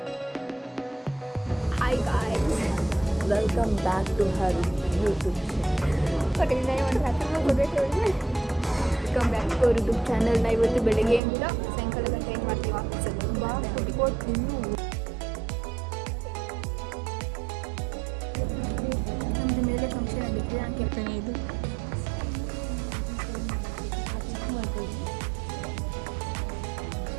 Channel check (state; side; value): drops out; left; at 11.2 s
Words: hi guys welcome back to her YouTube ಕೊಟ್ಟಿದ್ದೆ ಒಂದು ಹತ್ತು ವೆಲ್ಕಮ್ ಬ್ಯಾಕ್ ಟು ಯೂಟ್ಯೂಬ್ ಚಾನಲ್ನ. ಇವತ್ತು ಬೆಳಗ್ಗೆಯಿಂದ ಸಾಯಂಕಾಲ ಗಂಟೆ ಏನು ಮಾಡ್ತೀವಿ ಆಫೀಸಲ್ಲಿ ಬಾ ಕುಟ್ಕೊಟ್ಟು ನಮ್ಮದು ಮೇಲೆ ಫಂಕ್ಷನ್ ಆಗಿತ್ತು ನಾನು ಕೇಳ್ತೇನೆ. ಇದು